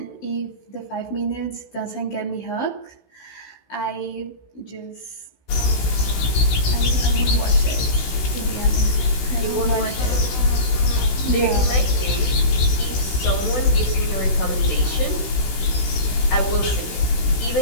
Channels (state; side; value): late; right; 16 ms